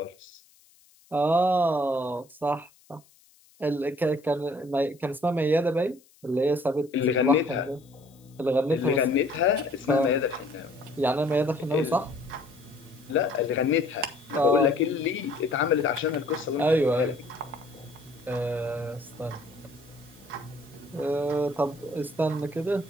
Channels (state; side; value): noise; left; hiss, 30 dB below the sound